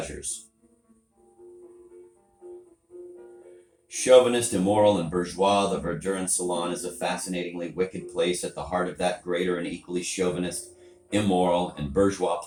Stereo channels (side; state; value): both; identical; correlation 1.00